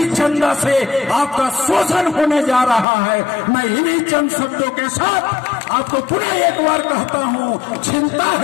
चंदा से आपका शोषण होने जा रहा है। मैं इन्हीं चंद शब्दों के साथ आपको पुनः एक बार कहता हूं, चिंता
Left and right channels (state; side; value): drops out; right; at 2.9 s